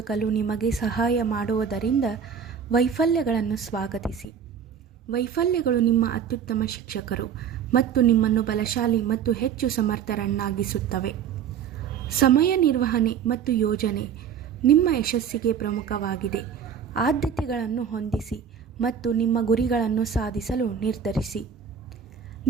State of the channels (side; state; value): left; quieter; 7.7 dB